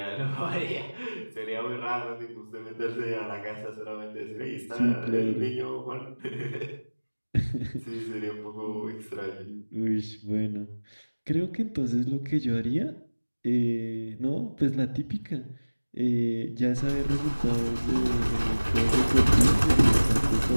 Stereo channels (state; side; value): inverted; both; correlation -1.00